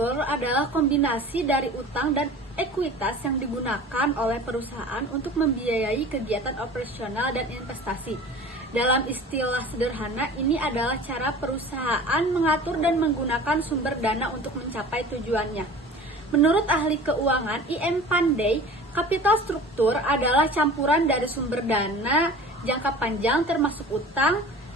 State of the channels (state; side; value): normal; both; correlation 0.40